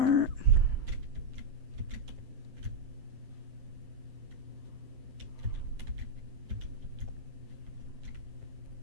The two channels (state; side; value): late; left; 7.7 ms